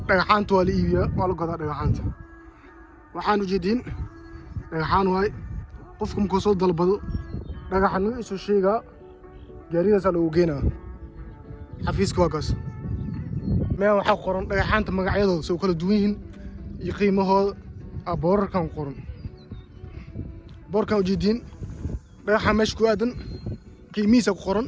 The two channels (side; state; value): both; identical; correlation 1.00